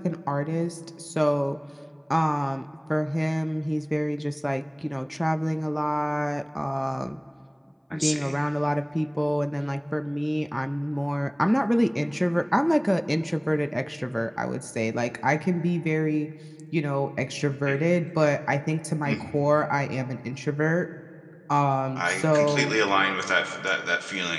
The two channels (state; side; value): identical; both; correlation 1.00